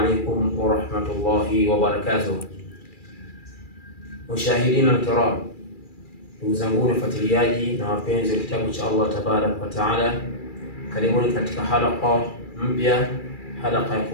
ورحمة الله وبركاته. مشاهدين الكرام، ndugu zangu wafuatiliaji na wapenzi wa kitabu cha Allah tabarak wa taala, karibuni katika halqa mpya, halqa ya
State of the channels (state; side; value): late; right; 2.4 ms